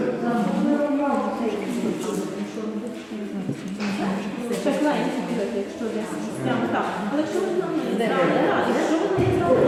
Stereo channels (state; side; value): identical; both; correlation 1.00